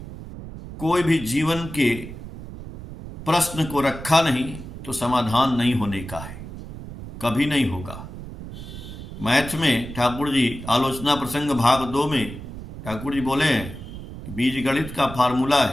कोई भी जीवन के प्रश्न को रखा नहीं तो समाधान नहीं होने का है, कभी नहीं होगा। मैथ में ठाकुर जी आलोचना प्रसंग भाग 2 में ठाकुर जी बोले हैं बीज गणित का फार्मूला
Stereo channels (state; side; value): noise; right; rumble, 12 dB below the sound